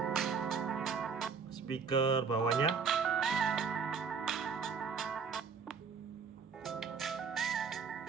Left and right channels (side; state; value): left; quieter; 5.7 dB